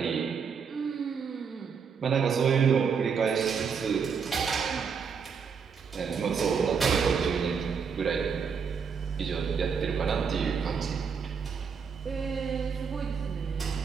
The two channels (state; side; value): quieter; left; 6.2 dB